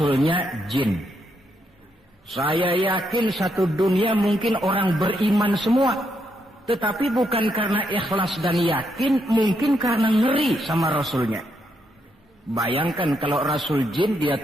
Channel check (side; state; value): both; normal; correlation 0.79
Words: jin. Saya yakin satu dunia mungkin orang beriman semua. Tetapi bukan karena ikhlas dan yakin, mungkin karena ngeri sama rasulnya. Bayangkan kalau rasul jin dia